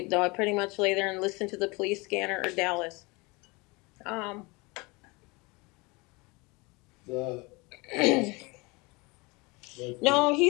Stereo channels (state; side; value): quieter; right; 26.0 dB